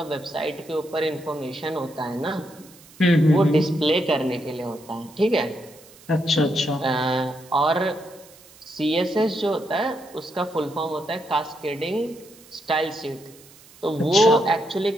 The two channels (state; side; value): noise; right; hiss, 24 dB below the sound